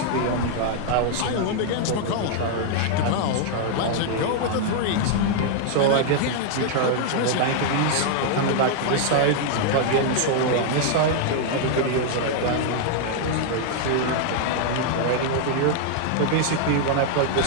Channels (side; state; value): both; different; correlation 0.00